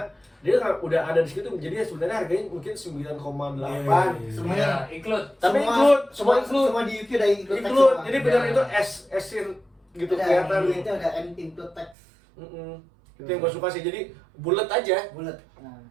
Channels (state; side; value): drops out; left; at 12.0 s